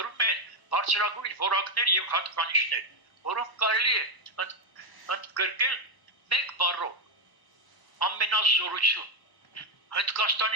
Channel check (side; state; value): right; late; 1.0 ms